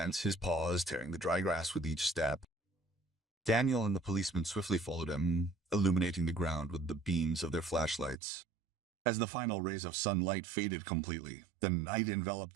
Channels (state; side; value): drops out; left; at 8.2 s